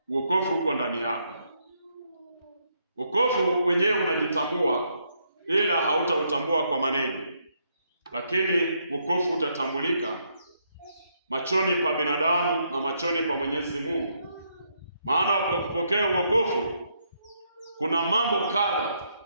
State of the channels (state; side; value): inverted; both; correlation -0.76